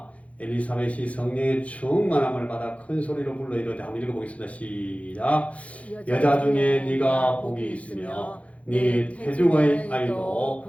엘리사벳이 성령의 충만함을 받아 큰 소리로 불러 이르되 한번 읽어보겠습니다. 시작. 여자 중에 네가 복이 있으며 네 태중의 아이도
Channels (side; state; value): right; late; 0.065 ms